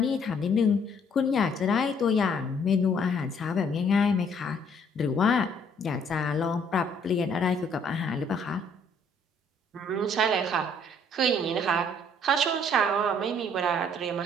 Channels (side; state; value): both; normal; correlation 0.63